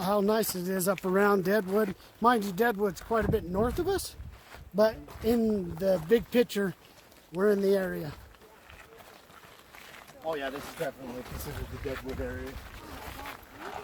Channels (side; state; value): both; identical; correlation 1.00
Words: how nice it is up around Deadwood. Mind you, Deadwood's quite a bit north of us, but in the big picture, we're in the area. Oh yeah, this is definitely considered the Deadwood area.